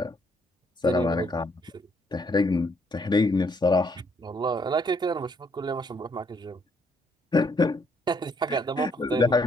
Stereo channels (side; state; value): both; normal; correlation 0.70